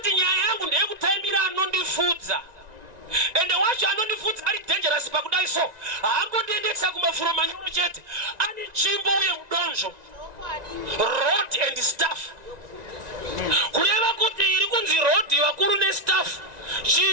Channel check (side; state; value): left; late; 1.9 ms